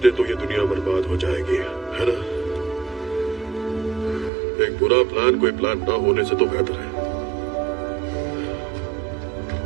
तो ये दुनिया बर्बाद हो जाएगी, है ना? एक बुरा प्लान कोई प्लान ना होने से तो बेहतर है।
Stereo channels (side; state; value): left; drops out; at 4.3 s